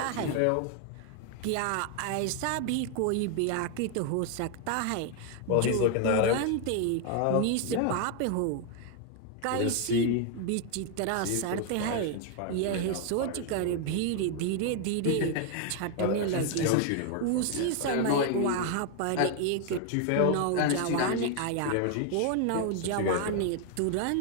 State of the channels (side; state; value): both; different; correlation 0.01